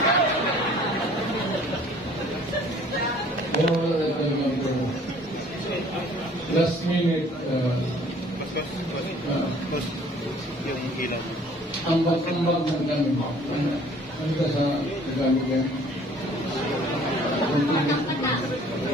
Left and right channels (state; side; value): normal; both; correlation 0.54